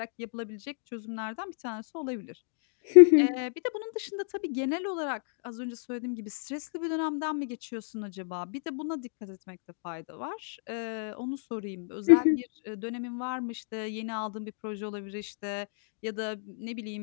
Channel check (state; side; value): silent; right; digital silence